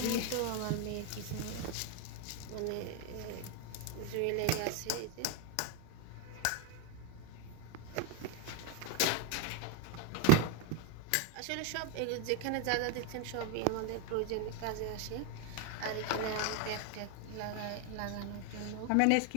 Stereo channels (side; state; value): both; different; correlation 0.02